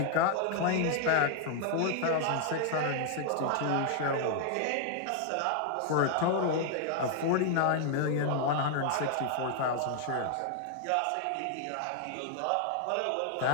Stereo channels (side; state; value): both; different; correlation 0.00